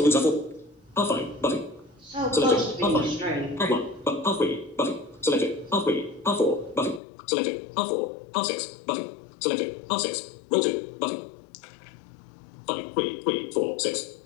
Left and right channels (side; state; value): right; drops out; at 7.0 s